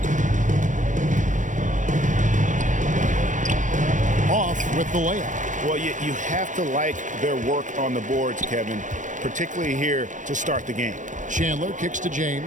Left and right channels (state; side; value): late; left; 0.37 ms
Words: Off with the layup. Well, you have to like their work on the boards, Kevin, particularly here to start the game. Chandler kicks to